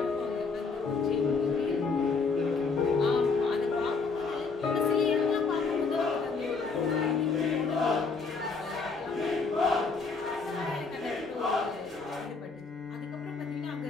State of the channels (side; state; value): right; quieter; 4.5 dB